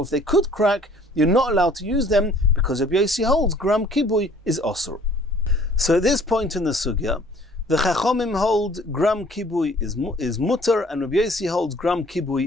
if they could crack, you're not allowed to use them because Rabbi Yossi holds gram kibui is osur. So at this point in the sugya, the Chachamim hold gram kibui is mutter, and Rabbi Yossi holds gram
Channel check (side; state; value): both; normal; correlation 0.55